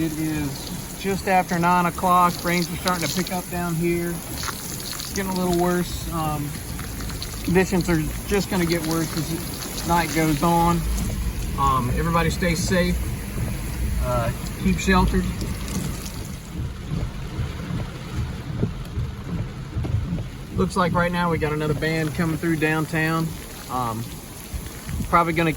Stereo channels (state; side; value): identical; both; correlation 1.00